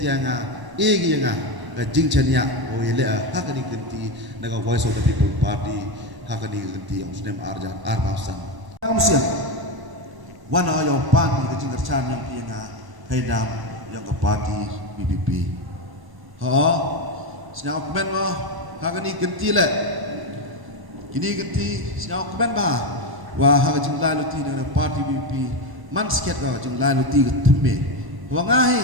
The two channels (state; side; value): late; left; 1.0 ms